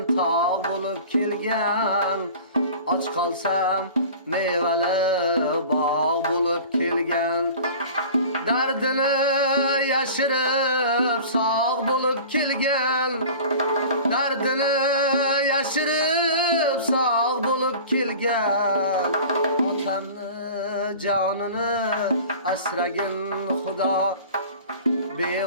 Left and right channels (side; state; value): both; inverted; correlation -0.41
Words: tog' bo'lib kelgan. Och qolsam mevali bog' bo'lib kelgan. Dardini yashirib sog' bo'lib kelgan. Dardini yashirib sog' bo'lib kelgan. Otamni jonini asragin Xudo.